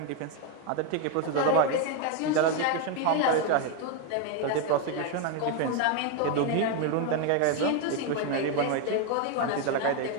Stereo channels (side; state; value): both; different; correlation 0.01